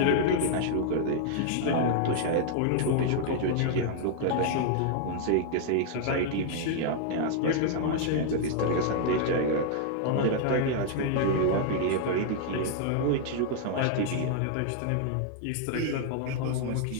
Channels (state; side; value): different; both; correlation 0.00